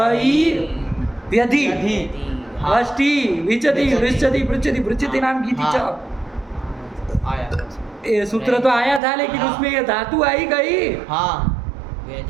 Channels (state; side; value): drops out; left; at 9.0 s